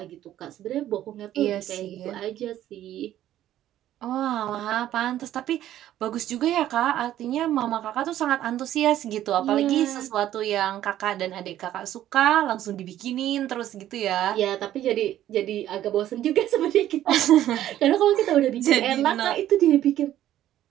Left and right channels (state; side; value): quieter; left; 12.5 dB